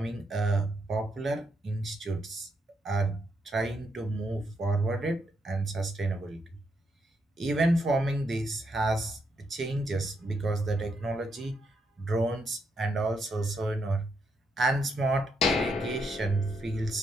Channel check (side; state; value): both; normal; correlation 0.79